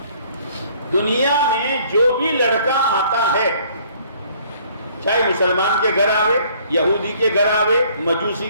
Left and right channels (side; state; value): both; inverted; correlation -0.59